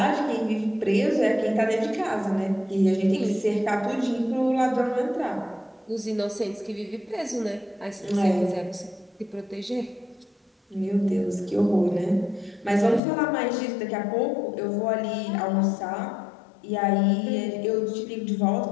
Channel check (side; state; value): right; drops out; at 13.0 s